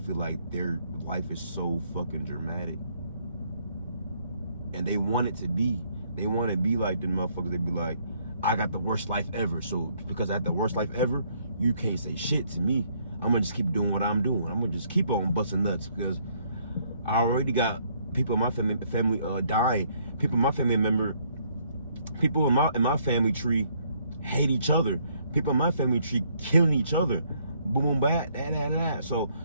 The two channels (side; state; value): both; inverted; correlation -0.67